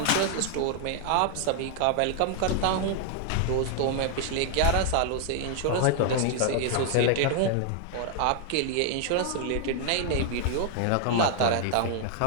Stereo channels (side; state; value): both; different; correlation 0.00